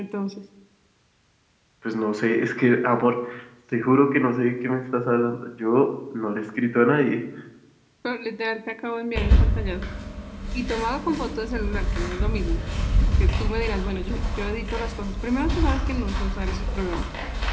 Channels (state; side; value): identical; both; correlation 1.00